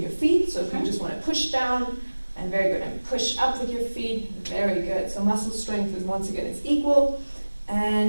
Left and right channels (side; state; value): both; inverted; correlation -1.00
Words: your feet, so if you just want to push down, and very good, and push up with your feet, very good. So muscle strength is, once again, it's equal.